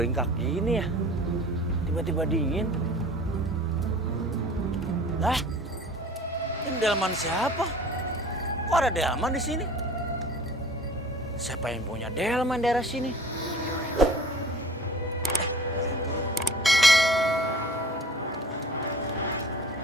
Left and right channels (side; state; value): both; normal; correlation 0.44